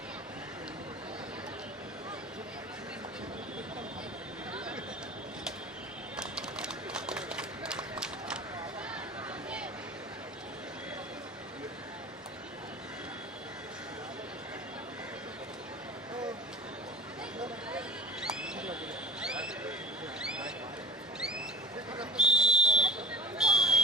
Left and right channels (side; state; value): both; normal; correlation 0.37